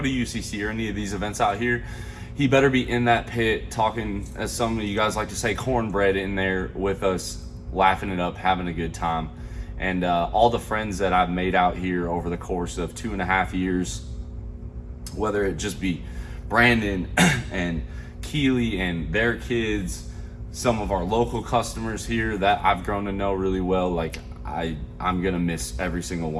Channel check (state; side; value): identical; both; correlation 1.00